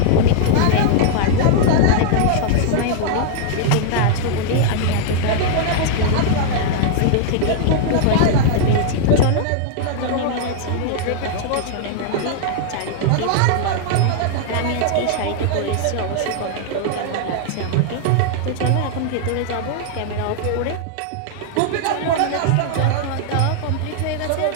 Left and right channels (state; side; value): different; both; correlation -0.01